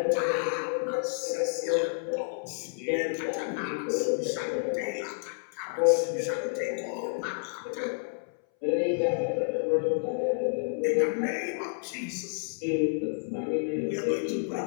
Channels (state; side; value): silent; right; 58 dB below the other